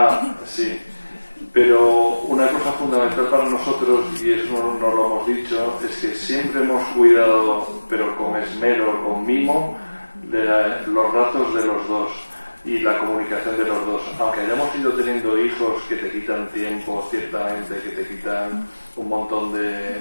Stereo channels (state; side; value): inverted; both; correlation -1.00